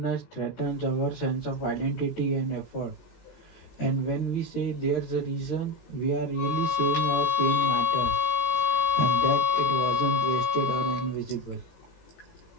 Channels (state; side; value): late; right; 18 ms